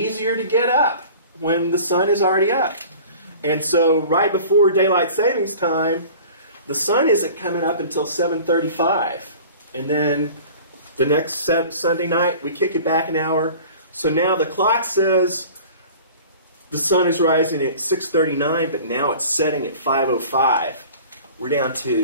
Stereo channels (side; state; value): both; inverted; correlation -0.43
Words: to get up when the sun is already up. And so right before daylight savings time, the sun isn't coming up until 7:35. And then the next Sunday night, we kick it back an hour. So now the clock says the sun is rising at 6:39, but now it's setting at 5:05. We're down